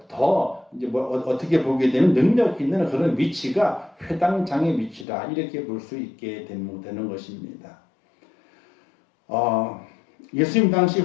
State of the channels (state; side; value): drops out; right; at 5.1 s